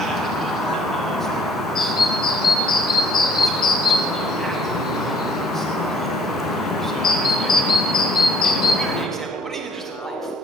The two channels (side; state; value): both; normal; correlation 0.59